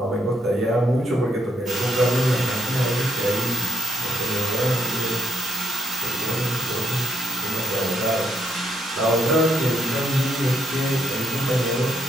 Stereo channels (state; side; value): normal; both; correlation 0.76